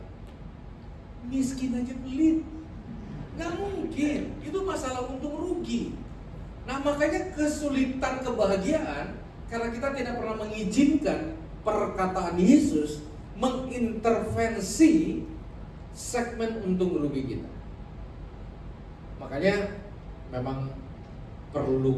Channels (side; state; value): both; identical; correlation 1.00